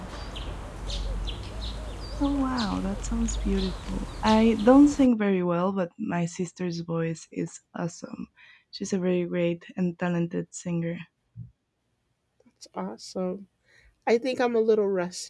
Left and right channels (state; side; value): identical; both; correlation 1.00